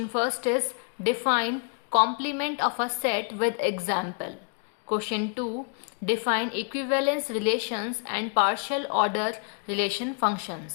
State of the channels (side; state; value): right; quieter; 37.1 dB